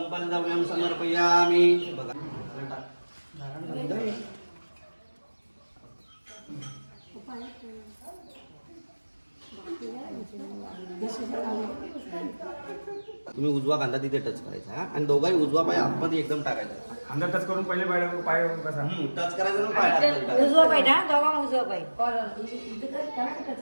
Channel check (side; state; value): both; inverted; correlation -1.00